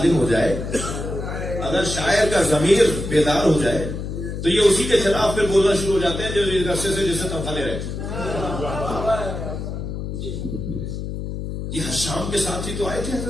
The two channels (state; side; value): noise; left; hum, 6 dB below the sound